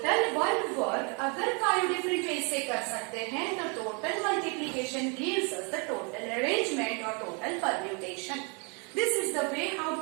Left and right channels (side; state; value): left; quieter; 34.5 dB